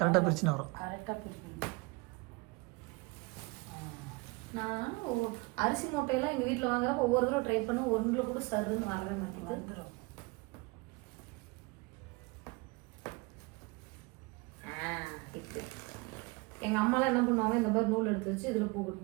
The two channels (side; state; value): left; quieter; 26.3 dB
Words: பிரிச்சுன்னு வரும். நான் அரிசி மூட்டையெல்லாம் எங்கள் வீட்டில் வாங்குறப்ப ஒவ்வொரு தடவை ட்ரை பண்ண ஒன்றில் கூட சருன்னு வரவே மாட்டேங்குது. இப்போ எங்கள் அம்மாலாம் என்ன பண்ணுவாங்க, இந்த மாதிரி நூல் எடுத்து வச்சு இதில் பூ